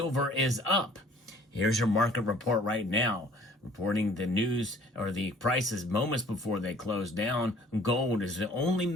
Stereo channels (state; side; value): normal; both; correlation 0.54